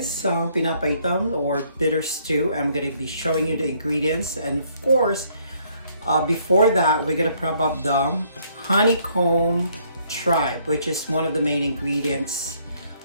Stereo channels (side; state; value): both; inverted; correlation -0.67